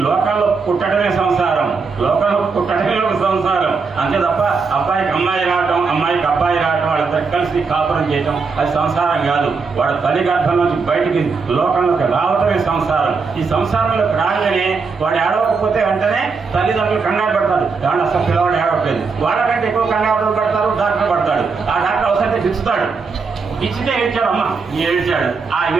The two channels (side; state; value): left; quieter; 4.8 dB